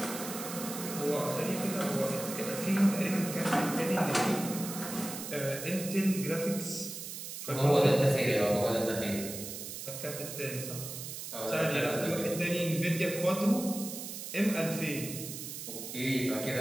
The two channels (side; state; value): right; noise; hiss, 8 dB below the sound